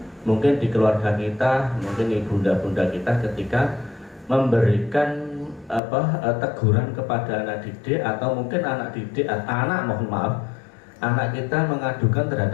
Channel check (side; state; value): right; drops out; at 5.8 s